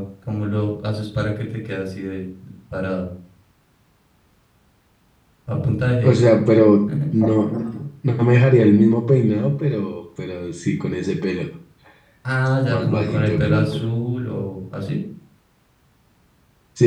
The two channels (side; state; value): both; identical; correlation 1.00